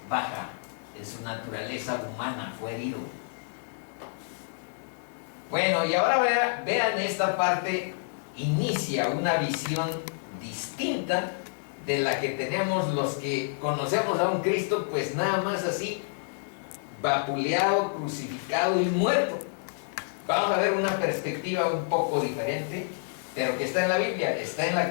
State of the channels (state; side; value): silent; right; digital silence